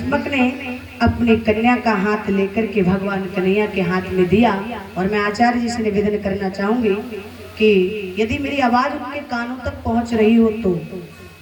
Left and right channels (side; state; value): both; identical; correlation 1.00